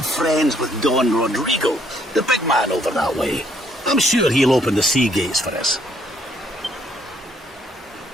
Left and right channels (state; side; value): normal; both; correlation 0.68